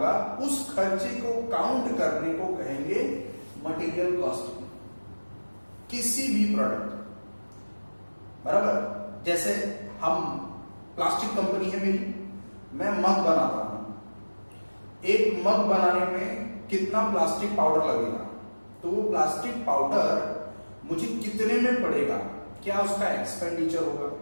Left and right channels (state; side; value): inverted; both; correlation -1.00